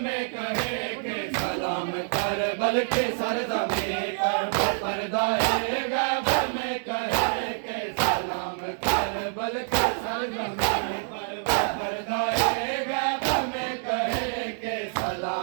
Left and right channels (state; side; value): silent; left; digital silence